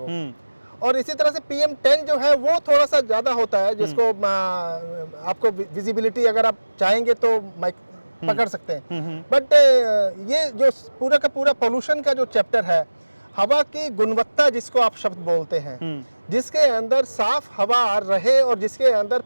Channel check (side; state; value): both; inverted; correlation -1.00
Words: और इसी तरह से PM 10 जो है वो थोड़ा सा ज़्यादा होता है, जिसको आपको विजिबिलिटी अगर आप चाहेंगे तो माइक पकड़ सकते हैं। बट ये जो पूरा का पूरा पोल्यूशन का जो चैप्टर है, हवा की गुणवत्ता जिसको आप शब्द बोलते हैं, जिसके अंदर साफ हवा रहे और जिसके अंदर